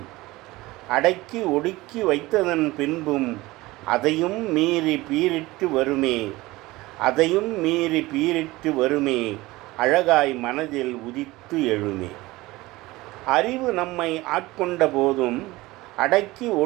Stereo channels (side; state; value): left; quieter; 19.7 dB